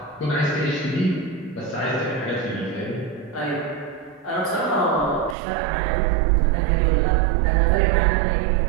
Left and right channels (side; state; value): left; drops out; at 5.4 s